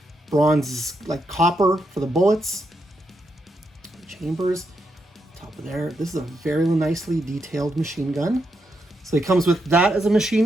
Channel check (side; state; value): both; normal; correlation 0.82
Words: bronze, like copper for the bullets. Chambers, top of there. This is a very nicely detailed machine gun. So he comes with that as a